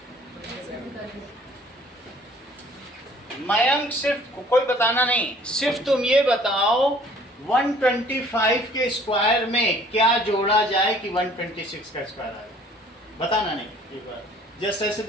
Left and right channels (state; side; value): normal; both; correlation 0.55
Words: मयंक, सिर्फ कोई बताना नहीं, सिर्फ तुम ये बताओ 125 के स्क्वायर में क्या जोड़ा जाए कि 126 का स्क्वायर आए। बताना नहीं, एक बार जस्ट ऐसे